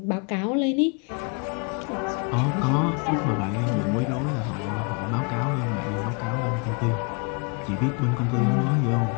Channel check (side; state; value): right; quieter; 33.8 dB